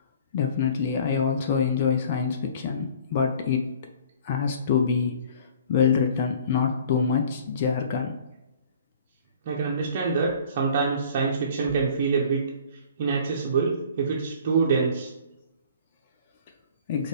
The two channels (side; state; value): both; inverted; correlation -0.50